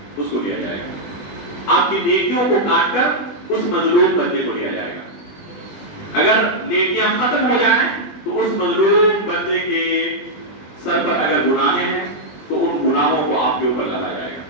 اس کو دیا جائے گا، آپ کی نیکیوں کو کاٹ کر اس مظلوم بندے کو دیا جائے گا. اگر نیکیاں ختم ہو جائیں تو اس مظلوم بندے کے سر پر اگر گناہ ہیں تو ان گناہوں کو آپ کے اوپر لایا جائے گا.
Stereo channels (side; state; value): right; late; 20 ms